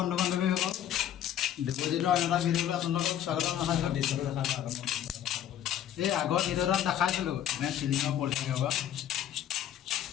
बान्धवीসকল ডিপোজিটৰ এটা ভিডিঅ'লৈ আপোনালোকক স্বাগতম জনাইছোঁ। এই আগৰ ভিডিঅ'ত দেখাইছিলোঁ এনে চিলিঙৰ পলিথিন হোৱা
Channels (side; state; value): right; quieter; 10.8 dB